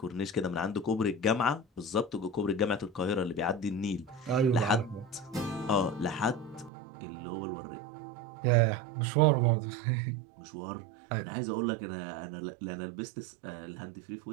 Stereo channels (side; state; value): left; drops out; at 6.7 s